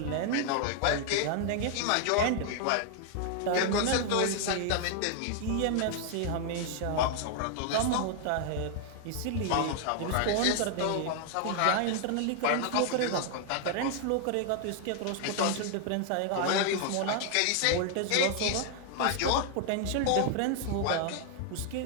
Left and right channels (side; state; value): both; different; correlation 0.00